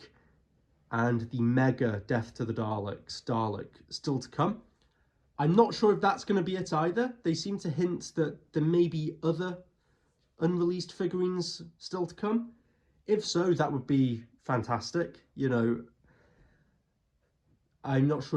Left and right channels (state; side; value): identical; both; correlation 1.00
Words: and the mega Death to the Daleks Dalek still to come. I'm not sure if that's going to be it either. They seem to hint that there may be other unreleased figurines still to come. If so, that would be fantastic. You know, I'm not